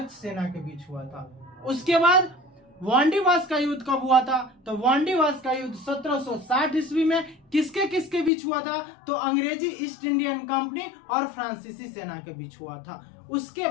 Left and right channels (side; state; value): right; drops out; at 8.3 s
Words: सेना के बीच हुआ था। उसके बाद वांडीवास का युद्ध कब हुआ था? तो वांडीवास का युद्ध 1760 ईस्वी में किसके किसके बीच हुआ था? तो अंग्रेजी ईस्ट इंडियन कंपनी और फ्रांसीसी सेना के बीच हुआ था। उसके